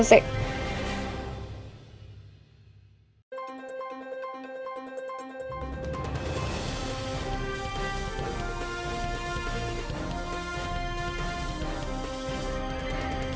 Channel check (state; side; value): identical; both; correlation 1.00